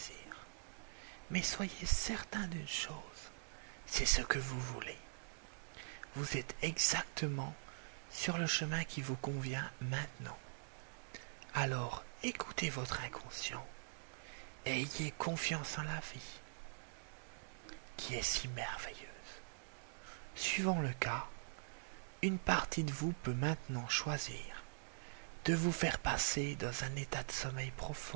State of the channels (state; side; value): silent; left; digital silence